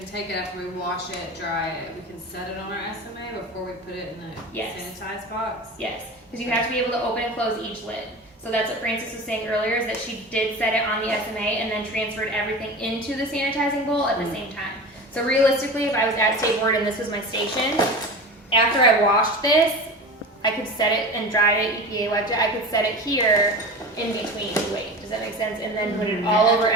take it after we wash it, dry it, we can set it on our SMA before we put it in the sanitized box? Yes, because you have to be able to open and close each lid. So that's what Frances was saying earlier, is that she did set it on the SMA and then transferred everything into the sanitizing bowl at the same time. So realistically, if I was at State Board and this was my station, after I washed this, I could set it and dried it, EPA wiped it, I could set it here in between, wait, does that make sense? And then put it all over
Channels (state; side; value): normal; both; correlation 0.31